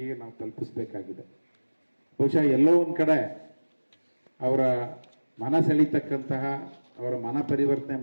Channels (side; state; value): both; inverted; correlation -1.00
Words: ನಾವು ತಲುಪಿಸಬೇಕಾಗಿದೆ. ಬಹುಶಃ ಎಲ್ಲೋ ಒಂದು ಕಡೆ ಅವರ ಮನ ಸೆಳೀತಕ್ಕಂತಹ, ಅವರ ಮನ ಪರಿವರ್ತನೆ